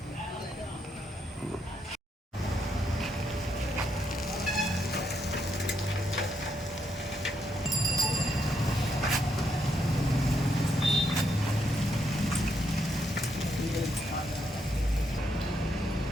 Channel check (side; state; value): both; normal; correlation 0.78